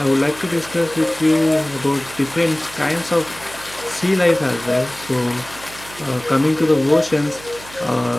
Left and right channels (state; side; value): noise; right; hum, 18 dB below the sound